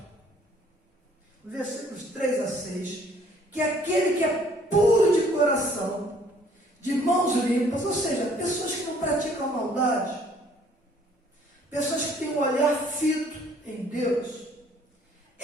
versículos 3 a 6, que aquele que é puro de coração, de mãos limpas, ou seja, pessoas que não praticam maldade, pessoas que têm um olhar fito em Deus,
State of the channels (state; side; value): normal; both; correlation 0.60